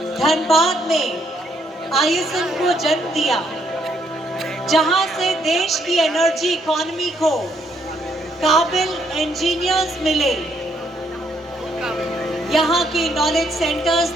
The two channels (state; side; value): normal; both; correlation 0.72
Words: धनबाद में आईएसएम को जन्म दिया, जहां से देश की एनर्जी इकोनॉमी को काबिल इंजीनियर्स मिले। यहाँ के नॉलेज सेंटर्स